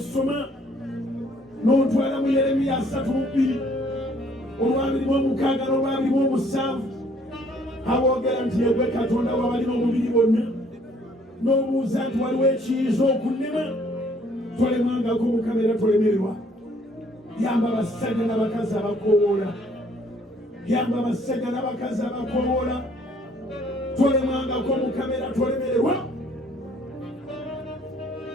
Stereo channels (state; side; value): normal; both; correlation 0.61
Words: n'otwala mu Yeremiya 3:2 olw'abiri-mu-6 n'olw'abiri-mu-7 aboogera nti yegwe Katonda w'abalina omubiri bonna. N'obuuza nti waliwo ekiyinza okunnema. Tolemangako Mukama era tolemererwa. Yamba abasajja n'abakazi abakoowoola. Yamba abasajja n'abakazi abakoowoola. Tolemangako Mukama era tolemererwa.